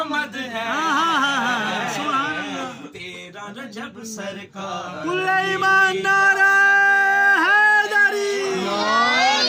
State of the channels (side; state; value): both; identical; correlation 1.00